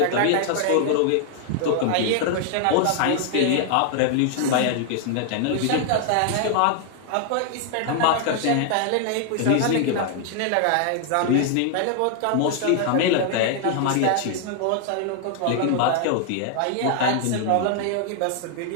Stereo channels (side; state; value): both; different; correlation 0.00